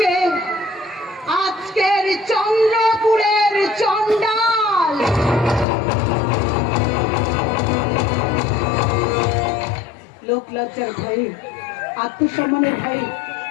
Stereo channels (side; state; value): right; drops out; at 5.7 s